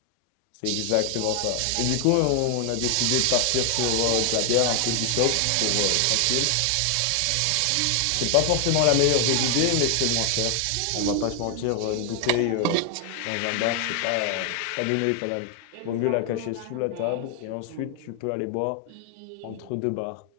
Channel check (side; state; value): both; different; correlation 0.00